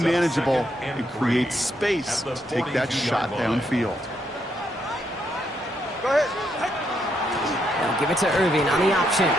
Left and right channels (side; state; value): both; normal; correlation 0.77